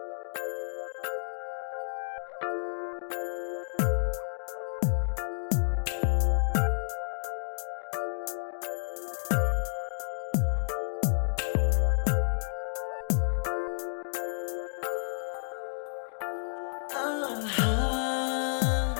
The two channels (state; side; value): silent; right; digital silence